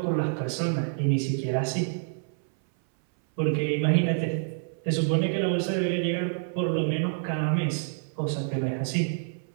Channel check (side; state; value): left; silent; 58 dB below the other